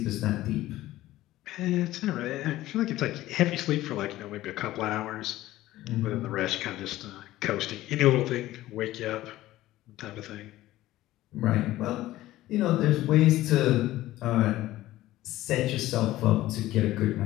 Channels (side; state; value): right; quieter; 15.8 dB